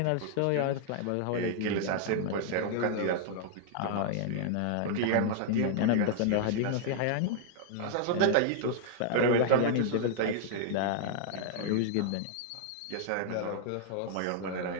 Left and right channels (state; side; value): different; both; correlation -0.01